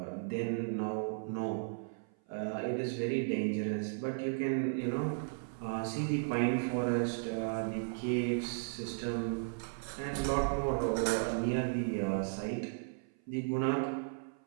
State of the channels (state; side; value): silent; left; 54 dB below the other